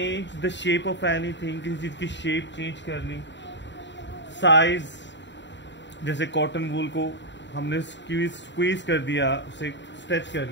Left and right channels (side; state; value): right; late; 0.52 ms